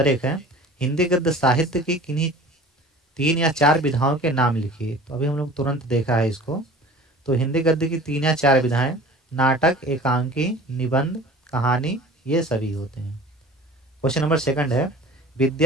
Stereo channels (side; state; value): both; normal; correlation 0.43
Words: 1 है, हिंदी गद्य साहित्य की किन्हीं 3 या 4 विधाओं के नाम लिखिए। तो अभी हम लोग तुरंत देखा है इसको। तो हिंदी गद्य की 3 या 4 विधाएं नाटक, एकांकी, निबंध, कहानी, ये सभी होते हैं। क्वेश्चन नंबर सेकंड है,